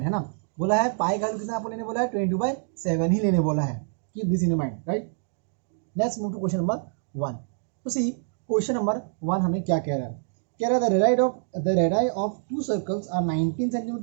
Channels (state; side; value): silent; left; digital silence